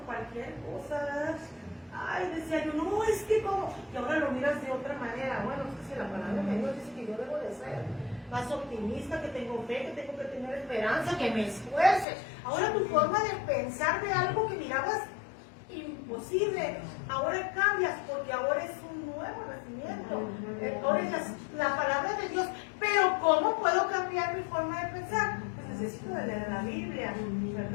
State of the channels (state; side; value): drops out; right; at 12.1 s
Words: cosa, ¿verdad? Ay, decía yo, no, es que como, y ahora lo miras de otra manera. Bueno, es que si la palabra de Dios dice que yo debo de ser más optimista, que tengo fe, que tengo que tener esperanza, que me esfuerce. Ahora tu forma de pensar de algo que mirabas imposible, ahora cambias, porque ahora es un nuevo nacimiento. Ahora es la palabra de Dios. Pero ¿cómo puedo cambiar mi forma de pensar? Pues necesito de leer la Biblia,